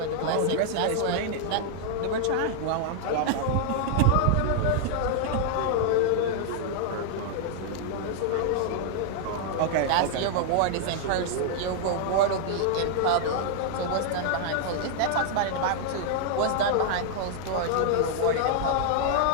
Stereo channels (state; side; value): different; both; correlation 0.00